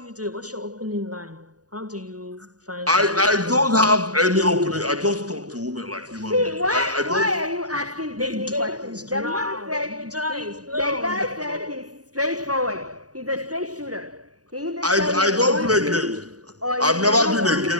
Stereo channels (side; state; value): left; late; 0.68 ms